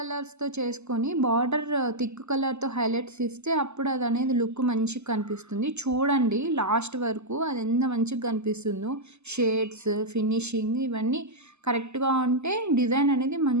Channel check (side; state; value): left; late; 0.81 ms